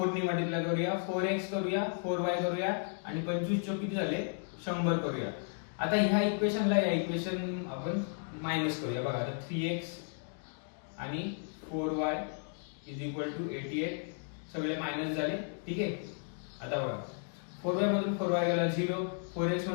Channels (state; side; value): silent; right; 55 dB below the other